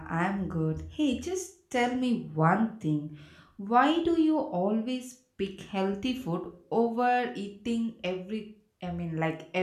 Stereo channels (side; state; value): both; identical; correlation 1.00